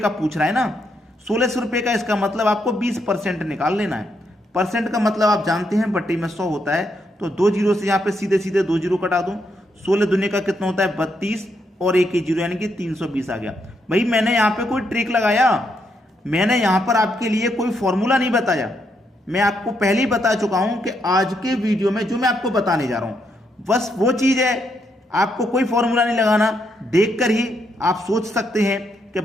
पूछ रहा है ना। 1600 रुपए का इसका मतलब आपको 20% निकाल लेना है। परसेंट का मतलब आप जानते हैं, बट्टी में 100 होता है, तो 2 जीरो से यहां पे सीधे सीधे 2 जीरो कटा दूं। 16 दुनिया का कितना होता है 32, और एक ही जीरो यानी कि 320 आ गया। भाई मैंने यहां पे कोई ट्रिक लगाया, मैंने यहां पर आपके लिए कोई फॉर्मूला नहीं बताया। मैं आपको पहले ही बता चुका हूं कि आज के वीडियो में जो मैं आपको बताने जा रहा हूं बस वो चीज है। आपको कोई फॉर्मूला नहीं लगाना, देखकर ही आप सोच सकते हैं कि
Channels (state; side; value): normal; both; correlation 0.78